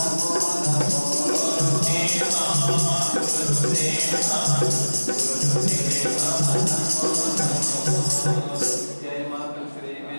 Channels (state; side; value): inverted; both; correlation -1.00